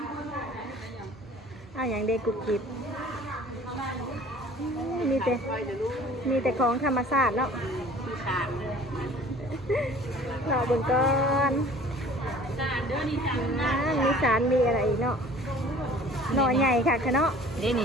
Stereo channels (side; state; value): both; normal; correlation 0.48